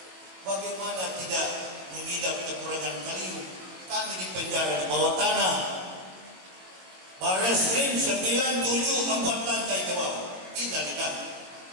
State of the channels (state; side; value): late; left; 21 ms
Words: Bagaimana tidak mengidap kekurangan kalium? Kami di penjara di bawah tanah, Barreskrim 974 lantai ke bawah. Innalillah.